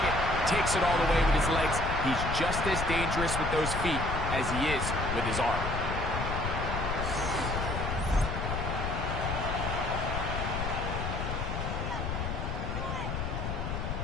takes it all the way with his legs. He's just as dangerous with those feet as he is with his arm.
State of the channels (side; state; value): left; noise; rumble, 3 dB below the sound